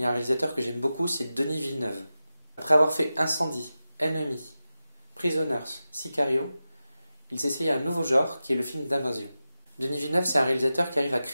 y a un réalisateur que j'aime beaucoup, c'est Denis Villeneuve. Après avoir fait Incendie, Enemy, Prisoners, Sicario, il s'essaye à un nouveau genre qui est le film d'invasion. Denis Villeneuve, c'est un réalisateur qui arrive à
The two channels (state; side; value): inverted; both; correlation -0.93